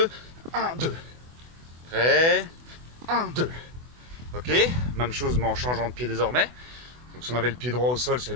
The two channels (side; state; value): left; late; 24 ms